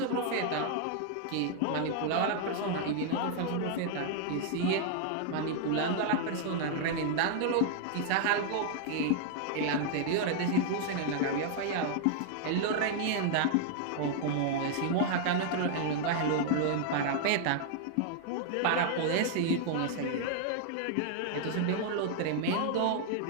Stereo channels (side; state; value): both; different; correlation 0.00